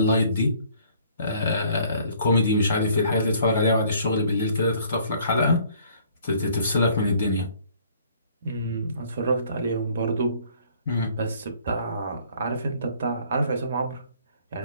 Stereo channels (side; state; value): both; inverted; correlation -0.58